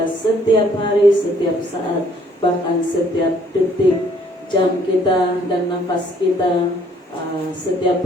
Setiap hari, setiap saat, bahkan setiap detik, jam kita dan nafas kita, setiap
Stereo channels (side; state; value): both; normal; correlation 0.62